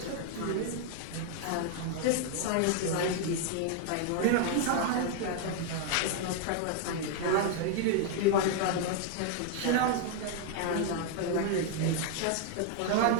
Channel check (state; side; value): different; both; correlation 0.00